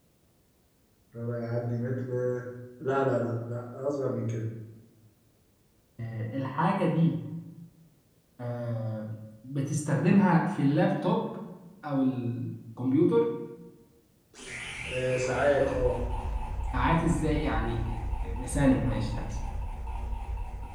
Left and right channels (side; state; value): both; identical; correlation 1.00